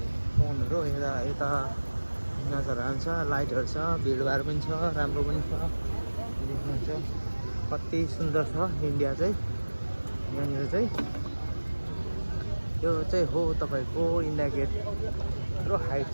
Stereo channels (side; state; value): both; inverted; correlation -1.00